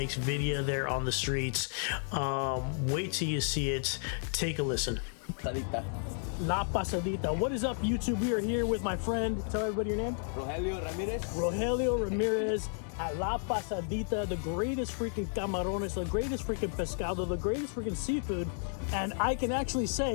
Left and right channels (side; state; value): right; silent; 56 dB below the other